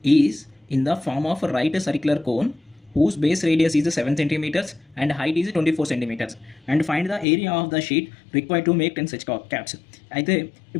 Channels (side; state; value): right; drops out; at 7.2 s